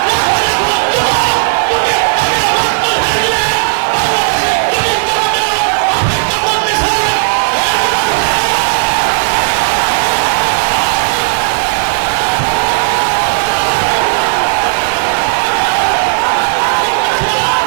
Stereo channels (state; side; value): silent; left; digital silence